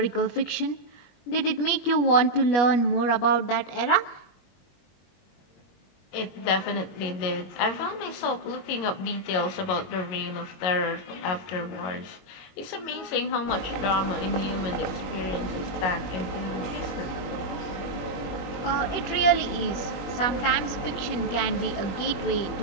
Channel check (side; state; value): right; late; 21 ms